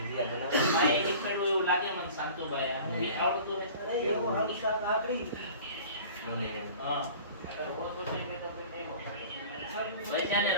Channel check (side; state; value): both; inverted; correlation -0.42